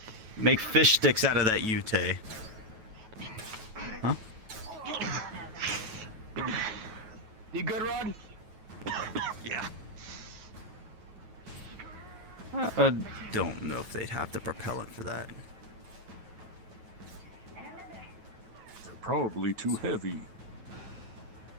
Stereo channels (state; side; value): late; left; 9.2 ms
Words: Make fish sticks out of that Yute. Huh? You good, Rod? Yeah. I don't know if they'd have the propellant for that. They're probably too heavy.